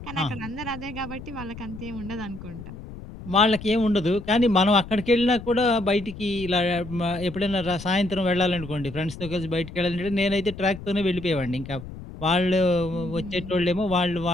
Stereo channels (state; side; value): noise; left; rumble, 13 dB below the sound